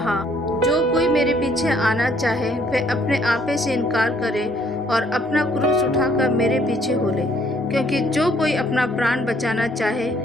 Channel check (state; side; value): normal; both; correlation 0.65